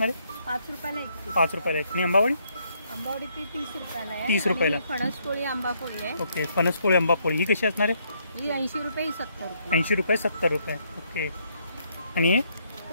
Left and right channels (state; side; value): inverted; both; correlation -0.72